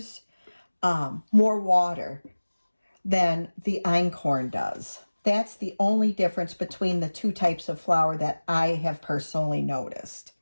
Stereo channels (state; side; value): inverted; both; correlation -1.00